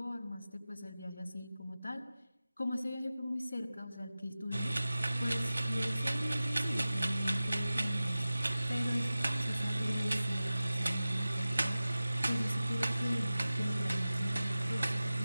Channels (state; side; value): inverted; both; correlation -0.96